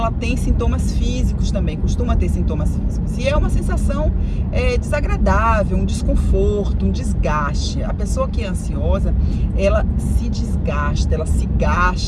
tem sintomas físicos também, costuma ter sintomas físicos. E é uma sensação desagradável, um desconforto, um desgaste. A pessoa que é ansiosa, ela se desgasta, ela se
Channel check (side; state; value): both; identical; correlation 1.00